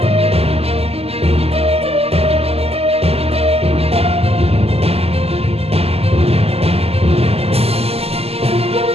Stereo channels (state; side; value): late; left; 0.29 ms